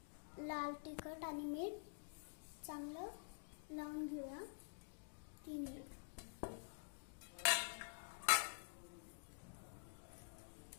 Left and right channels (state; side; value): silent; right; digital silence